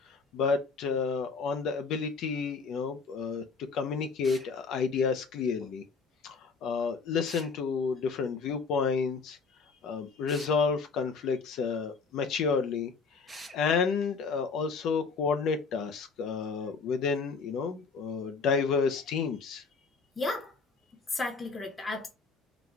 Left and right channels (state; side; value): quieter; right; 4.9 dB